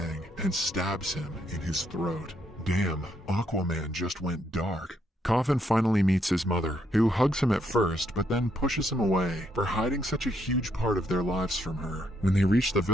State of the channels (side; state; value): both; normal; correlation 0.74